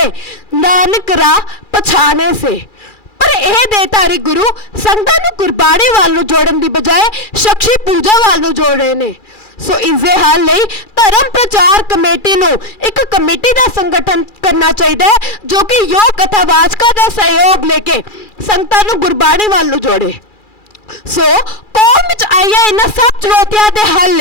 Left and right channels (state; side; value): late; right; 2.4 ms